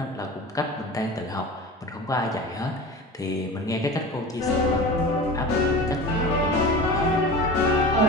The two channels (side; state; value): both; normal; correlation 0.34